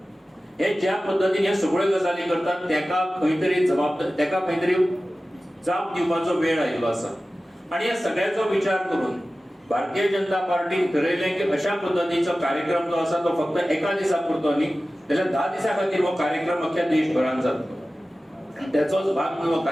हे ज्या पद्धतीने हे सगळ्यो गजाली करतात तेका खंय तरी जाप दिवपाचो वेळ आयिल्लो आसा. आणि या सगळ्याचो विचार करून भारतीय जनता पार्टीन ठरयलें की अशा पद्धतीचो कार्यक्रम जो आसा तो फक्त एका दिसा पुरतो न्ही, जाल्यार 10 दिसां खातीर हो कार्यक्रम अख्ख्या देशभरात जातलो. त्याचोच भाग म्हणून हो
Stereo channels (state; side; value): normal; both; correlation 0.96